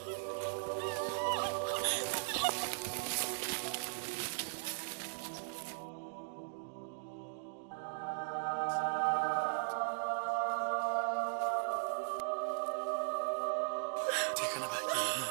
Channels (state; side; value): silent; left; digital silence